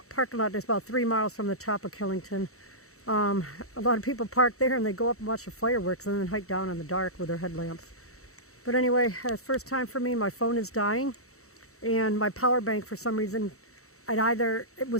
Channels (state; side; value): late; right; 0.64 ms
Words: parking lot that's about 3 miles from the top of Killington. A lot of people park there and they go up and watch the fireworks and then hike down in the dark with their headlamps. But anyway, first time for me, my phone is dying, and my power bank, for some reason, it